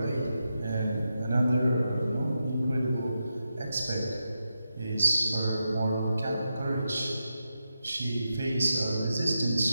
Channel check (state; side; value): inverted; both; correlation -0.88